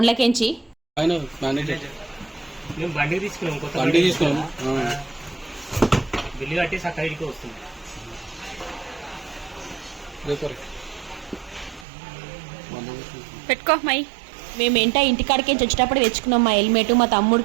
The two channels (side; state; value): left; drops out; at 11.9 s